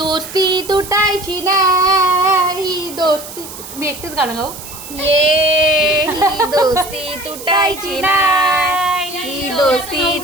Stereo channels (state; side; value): noise; right; hiss, 13 dB below the sound